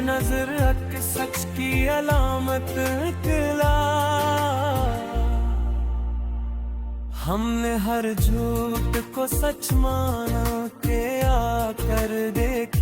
नजर सच की अलामत निकला। हमने हर झूठ को सच माना के आकर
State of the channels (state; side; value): identical; both; correlation 1.00